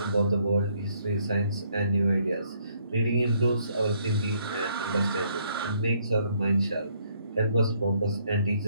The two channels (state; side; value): inverted; both; correlation -0.69